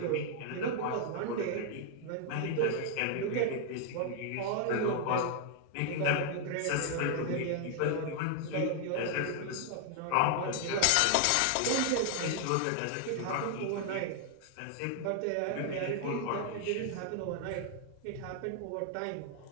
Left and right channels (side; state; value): both; different; correlation 0.00